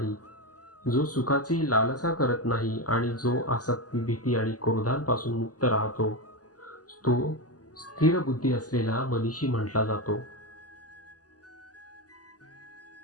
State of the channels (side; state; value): right; late; 0.67 ms